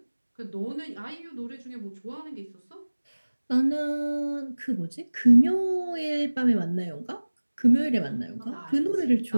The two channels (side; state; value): both; inverted; correlation -1.00